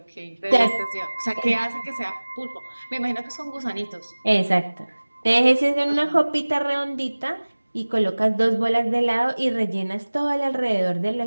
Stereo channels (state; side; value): inverted; both; correlation -1.00